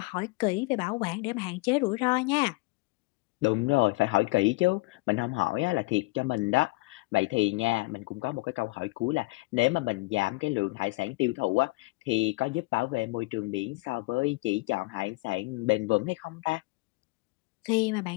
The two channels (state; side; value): quieter; right; 24.2 dB